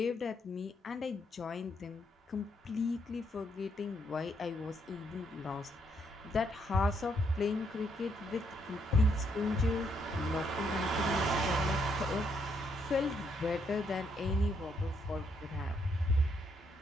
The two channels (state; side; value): normal; both; correlation 0.74